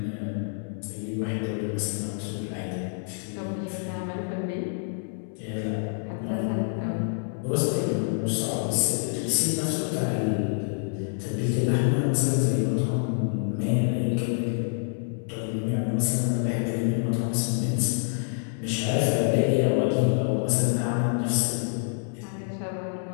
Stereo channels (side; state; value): right; silent; 60 dB below the other